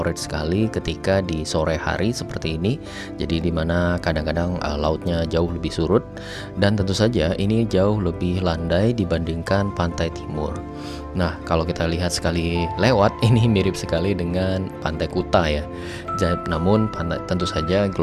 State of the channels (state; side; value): identical; both; correlation 1.00